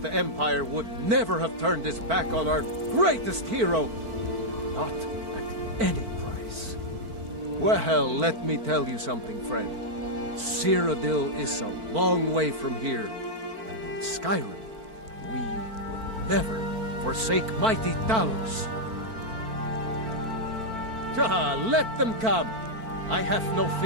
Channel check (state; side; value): late; left; 4.5 ms